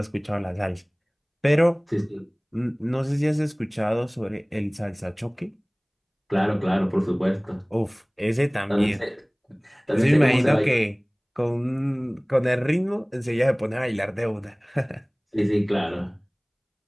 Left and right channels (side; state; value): both; identical; correlation 1.00